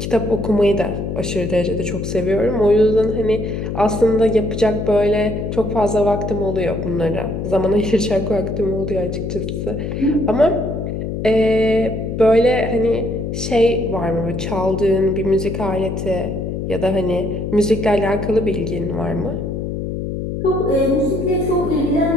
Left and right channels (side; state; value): left; noise; hum, 4 dB below the sound